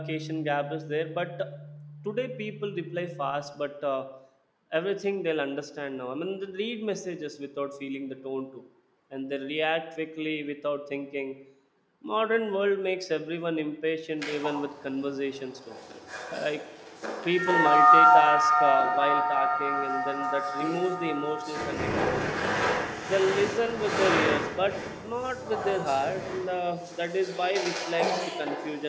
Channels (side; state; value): both; identical; correlation 1.00